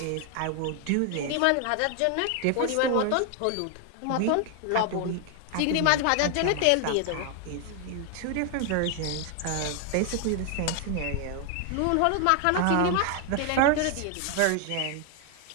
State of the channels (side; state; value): both; different; correlation 0.00